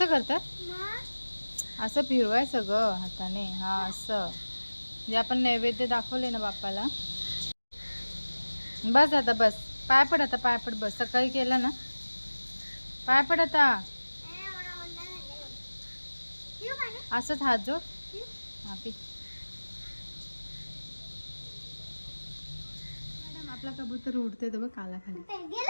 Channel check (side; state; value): both; inverted; correlation -1.00